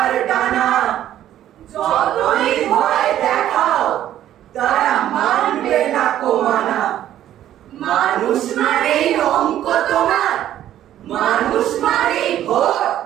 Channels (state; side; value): quieter; left; 12.0 dB